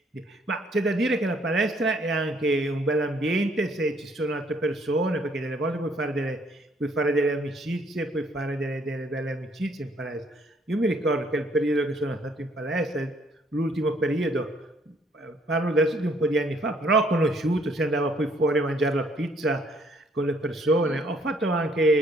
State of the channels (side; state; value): both; normal; correlation 0.65